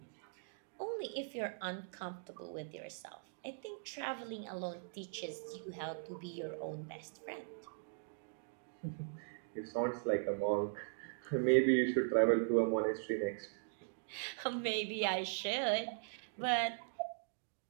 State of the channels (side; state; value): left; silent; digital silence